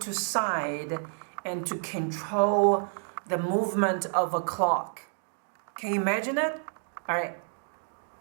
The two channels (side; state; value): left; silent; 58 dB below the other